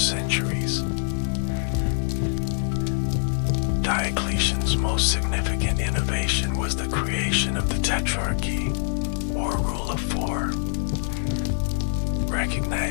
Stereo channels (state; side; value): silent; right; digital silence